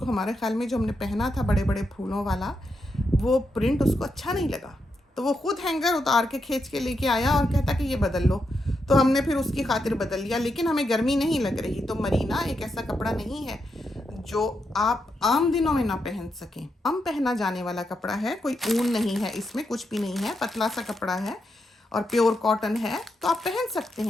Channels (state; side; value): normal; both; correlation 0.83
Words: हमारे ख्याल में जो हमने पहना था बड़े बड़े फूलों वाला, वो प्रिंट उसको अच्छा नहीं लगा, तो वो खुद हैंगर उतार के खींच के लेके आया और कहता कि ये बदल लो। तो हमने फिर उसकी खातिर बदल लिया, लेकिन हमें गर्मी नहीं लग रही। तो मरीना एक ऐसा कपड़ा नहीं है जो आप आम दिनों में ना पहन सकें। आम पहना जाने वाला कपड़ा है, कोई ऊन नहीं है, इसमें कुछ भी नहीं है, पतला सा कपड़ा है और प्योर कॉटन है, तो आप पहन सकते